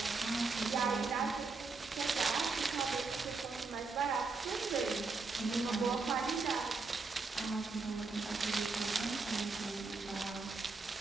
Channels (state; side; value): quieter; left; 4.1 dB